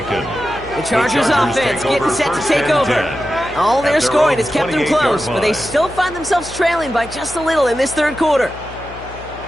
The Chargers offense getting set to take over. All their scoring has kept them close, but they still find themselves trailing by just a little in this 3rd quarter.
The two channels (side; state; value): left; noise; hum, 16 dB below the sound